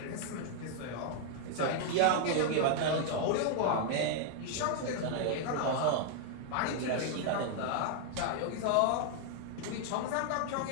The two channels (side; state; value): both; different; correlation 0.00